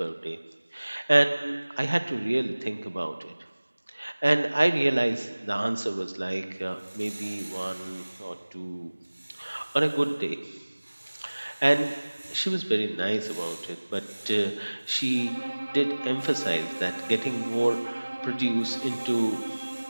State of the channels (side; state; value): both; inverted; correlation -1.00